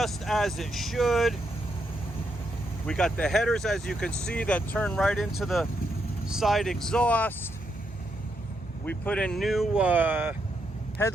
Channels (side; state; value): both; normal; correlation 0.80